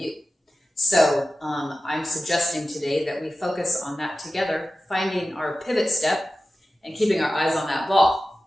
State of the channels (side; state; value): both; normal; correlation 0.94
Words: So I'm suggesting today that we focus on that together, finding our pivot step and keeping our eyes on that ball